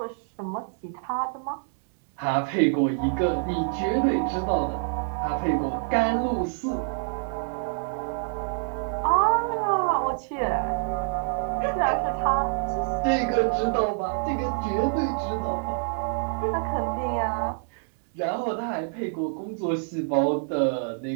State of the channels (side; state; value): left; silent; 61 dB below the other